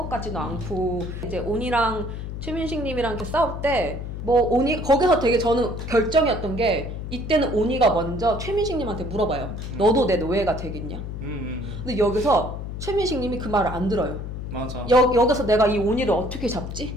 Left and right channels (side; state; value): left; noise; hum, 7 dB below the sound